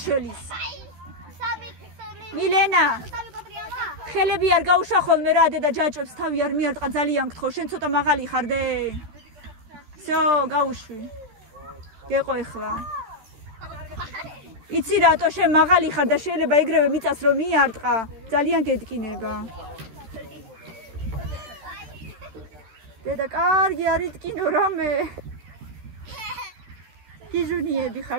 მილენა სამი კოტრიალა. ხელები არ გაუშახოლ მე რა დედა ჯაჭვებს თავი არ მიარტყა ძალიან გთხოვ შენ ცოტა მაღალი ხარ დე. всё, გაუშვი. გეყო ეხლა. იცი რატო შენ მაღალი ხარ და შეიძლება ეგრევე მიწას რომ მიარტყა, ძალიან გეტკინება. დედა კარგი არ იტკინო რამე. გიჟუნიები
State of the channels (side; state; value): left; late; 13 ms